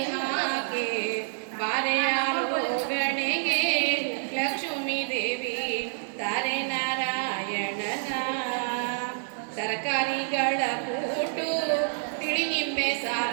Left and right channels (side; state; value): left; silent; digital silence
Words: ಹಾಕೆ ಬಾರೆಯಾರೋ ಗಣೆಗೆ ಲಕ್ಷ್ಮೀ ದೇವಿ ತಾರೆ ನಾರಾಯಣನ ತರಕಾರಿಗಳ ಕೂಟು ತಿಳಿ ನಿಂಬೆ